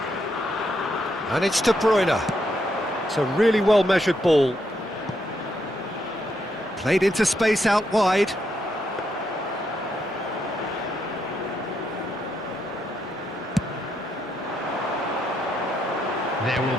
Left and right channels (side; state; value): both; normal; correlation 0.78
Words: And it's De Bruyne. It's a really well-measured ball. Played into space out wide. There will